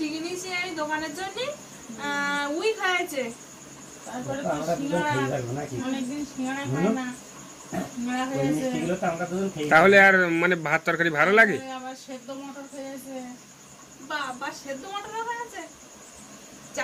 কিনেছি আমি দোকানের জন্য, ওই খেয়েছে। তারপরে তো তো আমরা দুজন সিঙ্গাড়া, খেয়ে থাকবো নাকি? অনেকদিন সিঙ্গাড়া খাই না, সিঙ্গাড়া ওই খেয়েছে। মিষ্টিগুলো তো আমরা দুজন খেয়ে তাহলে আর মানে ভাত তরকারি ভালো লাগে? তারপরে আবার সেদ্ধ মটর খেয়েছে। বা সেদ্ধ মটর খেয়েছে।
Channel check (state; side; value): identical; both; correlation 1.00